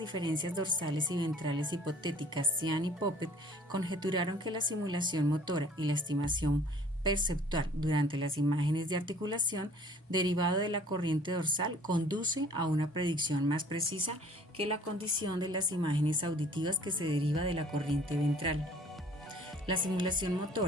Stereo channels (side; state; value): both; normal; correlation 0.52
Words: diferencias dorsales y ventrales hipotéticas, Cian y Poppet conjeturaron que la simulación motora y la estimación perceptual durante las imágenes de articulación derivado de la corriente dorsal conduce a una predicción más precisa que la condición de las imágenes auditivas que se deriva de la corriente ventral. La simulación